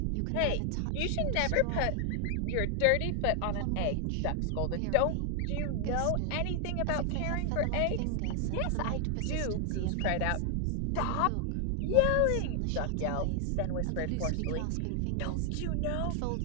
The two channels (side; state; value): both; different; correlation 0.00